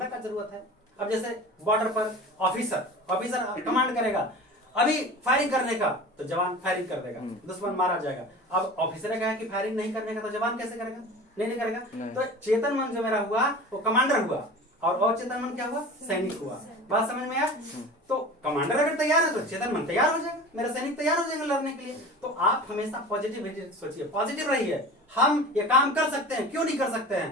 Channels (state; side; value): normal; both; correlation 0.36